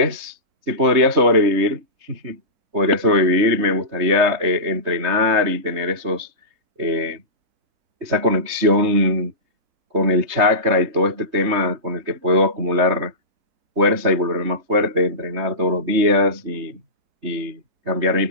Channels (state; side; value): late; left; 3.3 ms